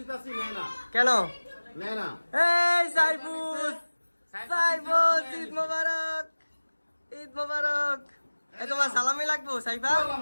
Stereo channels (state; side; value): inverted; both; correlation -1.00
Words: নাই না। কেন? নাই না। এই সাইফুস, সাইফুস, ঈদ মোবারক, ঈদ মোবারক। এই তোমার সালামি লাগবো Saifa?